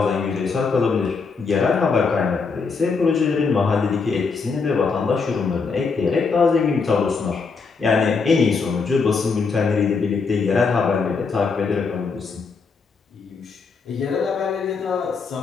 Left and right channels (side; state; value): right; quieter; 4.9 dB